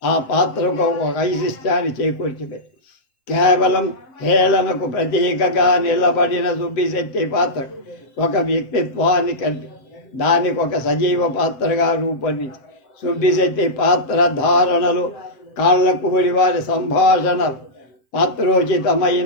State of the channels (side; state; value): right; late; 7.7 ms